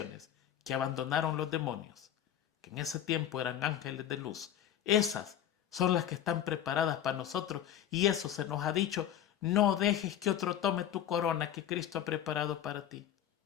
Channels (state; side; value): quieter; right; 10.7 dB